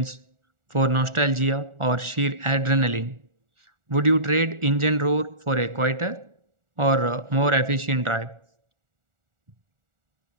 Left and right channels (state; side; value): late; left; 1.4 ms